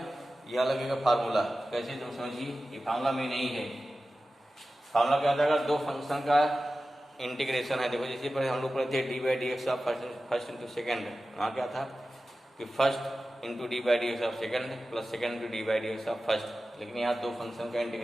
यह लगेगा फार्मूला। कैसे? तुम समझिए, ये फार्मूला में नहीं है। फार्मूला क्या होता है? दो फंक्शन का इंटीग्रेशन है। देखो जैसे पहले हम लोग पढ़े थे D by D X of first into second. वहाँ क्या था कि first into D by D X of second plus second into D by D X of first. लेकिन यहाँ दो फंक्शन का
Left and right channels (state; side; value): normal; both; correlation 0.95